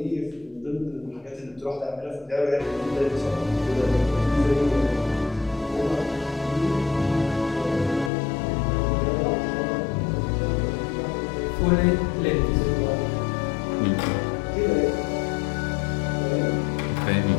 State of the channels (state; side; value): drops out; right; at 8.1 s